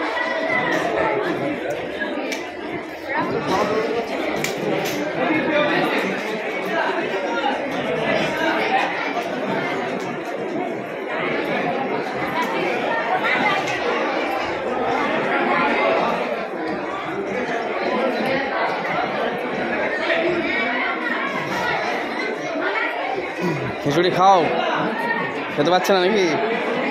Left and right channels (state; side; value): identical; both; correlation 1.00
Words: খিচুড়ি খাও, খেতে পারছে না নাকি?